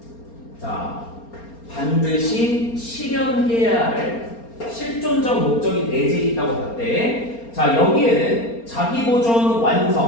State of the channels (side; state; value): right; late; 4.3 ms